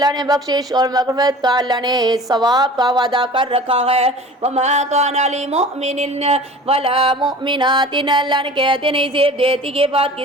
نے بخشش اور مغفرت کا، اللہ نے ثواب کا وعدہ کر رکھا ہے. وما کان لمؤمن ولا مؤمنات، اللہ نے کہتے نہیں زیب دیتی کے بعد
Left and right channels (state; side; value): normal; both; correlation 0.41